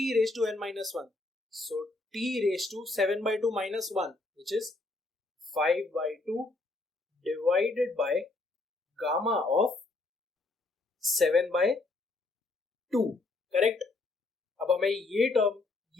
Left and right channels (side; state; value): right; quieter; 3.2 dB